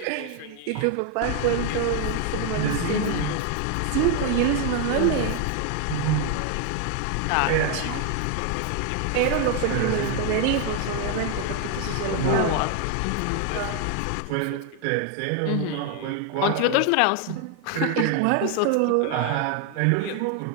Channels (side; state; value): both; different; correlation 0.00